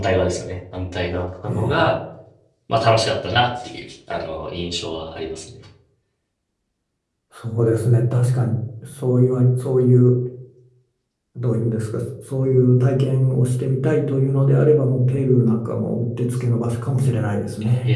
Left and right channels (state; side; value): identical; both; correlation 1.00